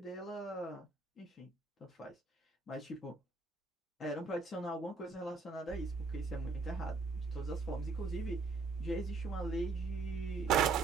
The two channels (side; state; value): left; quieter; 4.1 dB